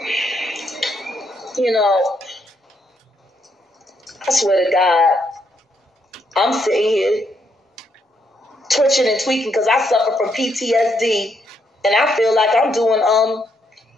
You know, I swear to God, I'm sitting here twitching and tweaking because I suffer from PTSD, and I feel like I'm doing a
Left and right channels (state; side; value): normal; both; correlation 0.76